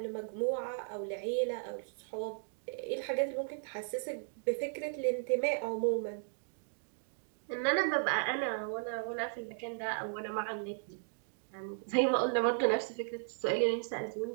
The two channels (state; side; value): silent; left; digital silence